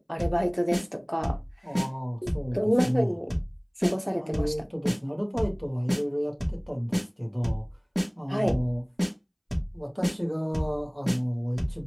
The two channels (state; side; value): identical; both; correlation 1.00